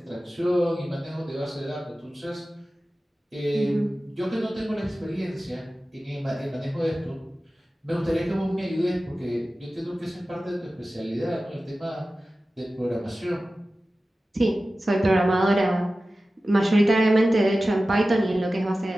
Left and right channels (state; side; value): normal; both; correlation 0.95